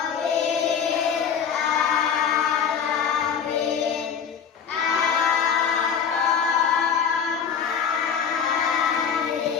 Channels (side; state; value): right; quieter; 7.1 dB